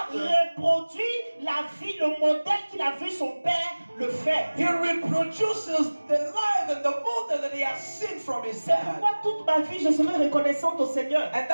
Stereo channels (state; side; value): inverted; both; correlation -1.00